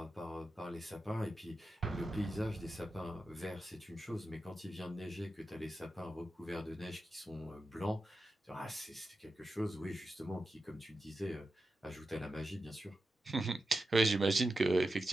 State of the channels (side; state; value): both; normal; correlation 0.90